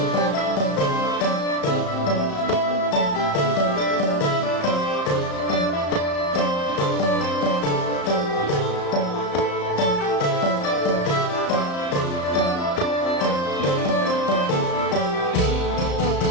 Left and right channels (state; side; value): late; right; 34 ms